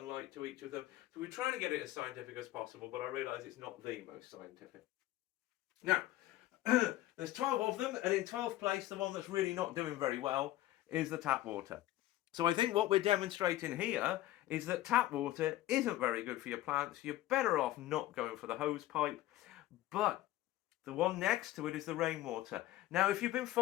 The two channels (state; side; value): quieter; right; 15.3 dB